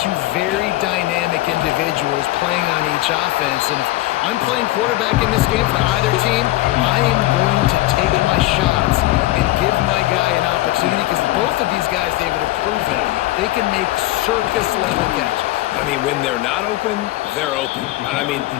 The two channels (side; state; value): right; quieter; 17.5 dB